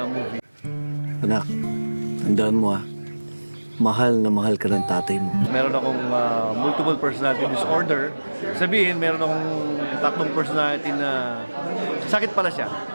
movie. Anak, tandaan mo mahal na mahal ka ng tatay mo. Meron akong multiple personality disorder. Sabihin, meron akong tatlong personality na sakit pala siya.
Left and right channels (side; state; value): both; inverted; correlation -1.00